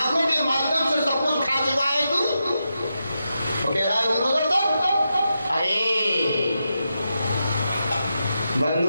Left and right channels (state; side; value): inverted; both; correlation -0.87